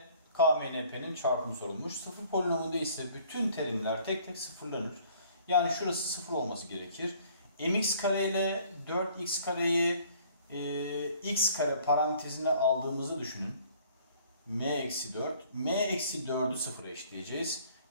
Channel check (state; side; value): inverted; both; correlation -0.57